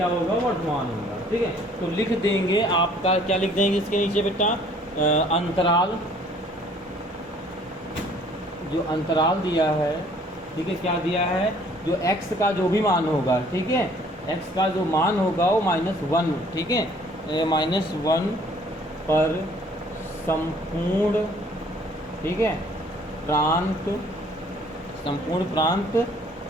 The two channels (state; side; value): normal; both; correlation 0.57